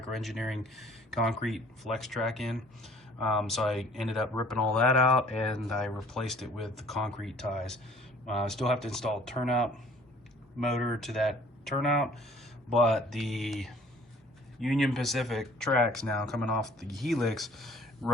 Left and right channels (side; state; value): both; normal; correlation 0.54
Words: concrete flex track in. So I ended up ripping all that out and I replaced it with the concrete ties. I still have to install a turnout motor to that turnout, but the Union Pacific tracks now coming off the helix